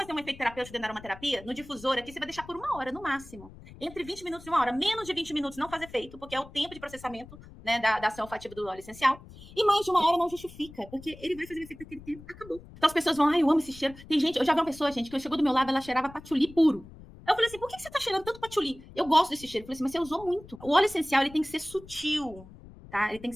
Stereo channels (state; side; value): noise; left; rumble, 19 dB below the sound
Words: um efeito terapêutico dentro da aromaterapia, no difusor aqui, você vai deixar por 1 hora, no máximo. Entre 20 minutos e 1 hora. Menos de 20 minutos não faz efeito, porque é o tempo de processamento, né, da ação olfativa do óleo essencial. E mais de 1 hora não justifica, porque ele vai fazer o efeito daquele tempo, acabou. Então as pessoas vão, ai, eu amo esse cheiro. Tem gente, eu já vi uma pessoa, gente, que chegou do meu lado, ela cheirava patchouli puro. Eu falei assim, por que você tá cheirando tanto patchouli? Eu gosto desse cheiro. Eu falei assim, mas você usou muito. O óleo essencial, ele tem que ser sutil, tá? Ele tem